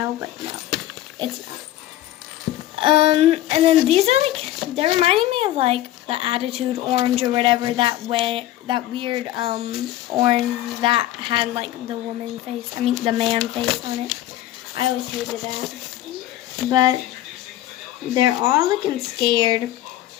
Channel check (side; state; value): right; quieter; 14.1 dB